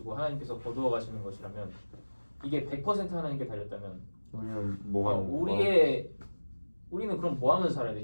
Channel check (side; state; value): both; inverted; correlation -1.00